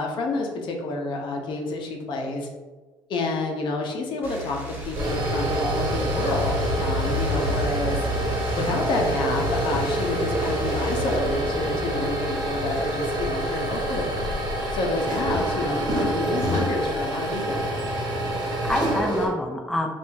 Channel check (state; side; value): normal; both; correlation 0.52